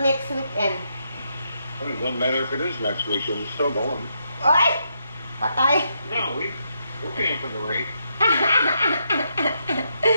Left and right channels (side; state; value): both; inverted; correlation -0.79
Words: weekend. Well, it doesn't matter if it is next weekend. It's still going. Ay! Patay. No, we're paying for the rate.